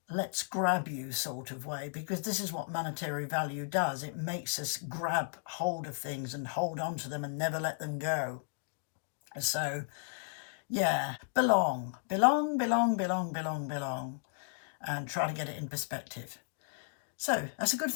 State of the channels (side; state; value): right; silent; digital silence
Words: let's grab you sort of way, because this is what monetary value does. It makes us grab hold of things and hold on to them and never let them go. So, yeah, belong, belong, belong, belong, belong, belong, and try to get it in perspective. So that's a good